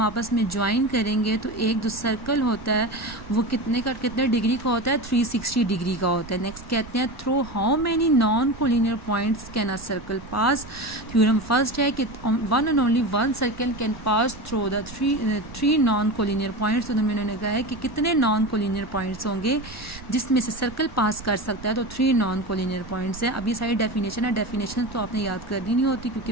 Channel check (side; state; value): right; noise; rumble, 17 dB below the sound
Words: आपस में ज्वाइन करेंगे तो एक जो सर्कल होता है वो कितने डिग्री का होता है, 360 डिग्री का होता है। नेक्स्ट कहते हैं through how many non collinear points can a circle pass. Theorem first है कि one and only one circle can pass through the three non collinear points. तो उन्होंने कहा है कि कितने नॉन कोलिनियर पॉइंट्स होंगे जिसमें से सर्कल पास कर सकता है, तो 3 नॉन कोलिनियर पॉइंट्स है। अब ये सारी डेफिनेशन है, डेफिनेशन तो आपने याद करनी नहीं होती